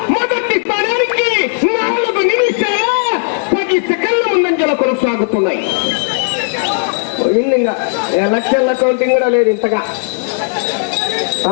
మొదటి స్థానానికి 4 నిమిషాల 10 సెకండ్ల ముందంజలో కొనసాగుతున్నాయి. ఇంకా ఎలక్షన్ల కౌంటింగ్ కూడా లేదు ఇంతగా.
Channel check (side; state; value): right; silent; digital silence